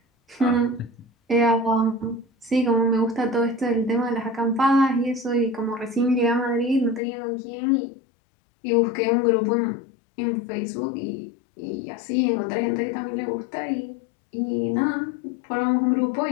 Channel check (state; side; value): drops out; right; at 7.0 s